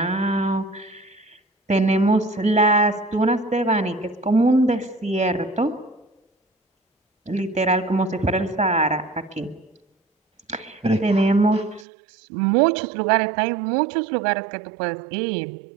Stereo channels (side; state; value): left; drops out; at 11.9 s